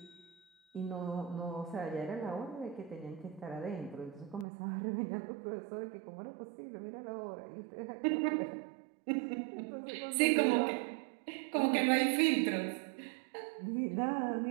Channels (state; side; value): drops out; left; at 4.5 s